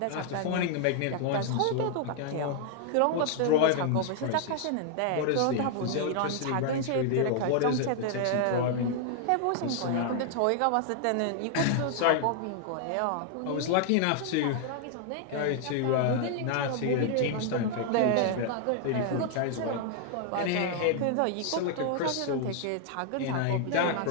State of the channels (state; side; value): different; both; correlation 0.00